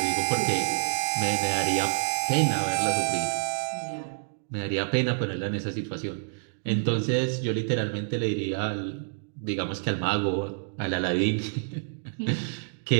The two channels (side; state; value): left; silent; digital silence